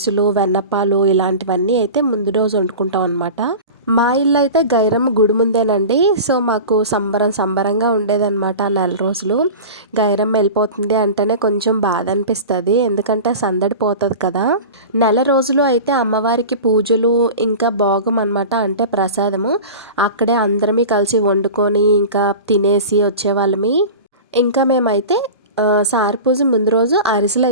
వెన్నప్పాలు ఇలాంటివన్నీ అయితే ముందు రోజు వండుకుంటాం అనమాట. మా ఇల్లు అయితే గైరమ్మ గుడి ముందేనండి. సో మాకు సంబరంగా ఉండేదన్నమాట ఆ నెల రోజులు. గైరమ్మ వెళ్ళిపోతుంది అంటేనే కొంచెం బాధ అనిపిస్తుంది, ఎందుకంటే సందడి పోతుంది కదా. నెల రోజులు అయితే అమ్మవారికి పూజలు ఇంకా భోగం అనమాట, అంటే ప్రసాదము అక్కడే అందరమీ కలిసి వండుకొని ఇంకా తినేసి వచ్చేవాళ్ళమి. ఇంకా మేమైతే సారి పూజ ముందు రోజు అరిసెలు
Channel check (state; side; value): inverted; both; correlation -0.33